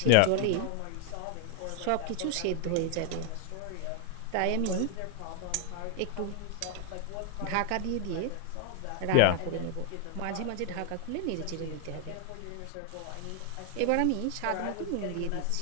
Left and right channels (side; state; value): both; different; correlation 0.00